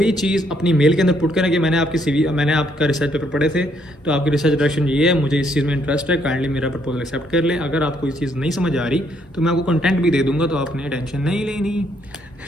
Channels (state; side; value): normal; both; correlation 0.70